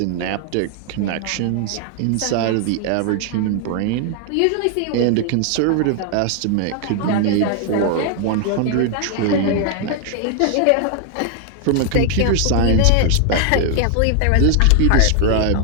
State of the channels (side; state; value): both; different; correlation 0.00